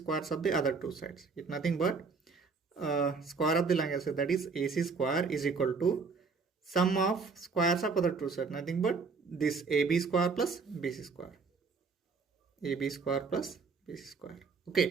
of the other two sides. It's nothing but square of the longest side, that is AC square, is equal to sum of squares of other two sides, nothing but this AB square plus BC square. AB square plus BC square.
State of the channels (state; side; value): quieter; left; 4.7 dB